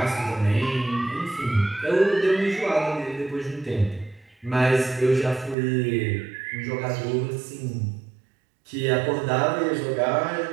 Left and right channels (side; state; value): left; drops out; at 5.6 s